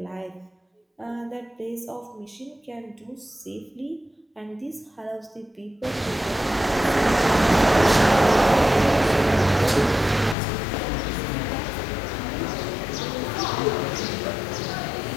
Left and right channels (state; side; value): drops out; right; at 10.4 s